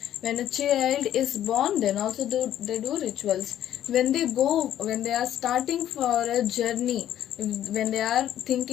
When a child is born, then also they do rituals. When they are starting for a journey, when they are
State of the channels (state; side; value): quieter; right; 11.4 dB